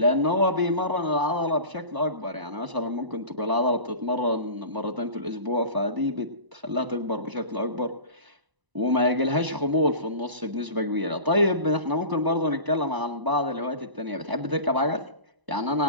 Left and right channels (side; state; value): left; late; 1.0 ms